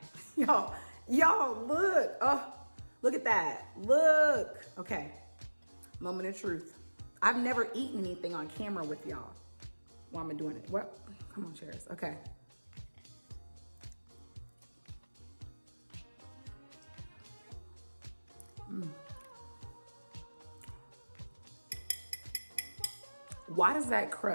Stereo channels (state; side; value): inverted; both; correlation -1.00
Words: y'all look. Oh, look at that, look. Okay, moment of truth. I've never eaten anything on camera with y'all while I'm doing it. Well, come on, cheers. Okay. Why does that